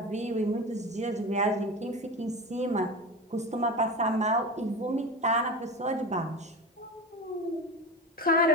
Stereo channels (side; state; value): both; normal; correlation 0.28